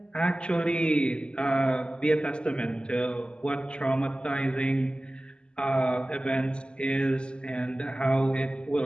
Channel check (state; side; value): late; right; 0.051 ms